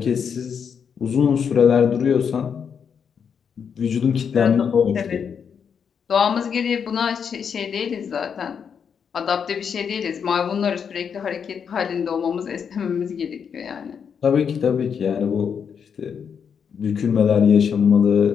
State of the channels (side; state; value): right; quieter; 7.0 dB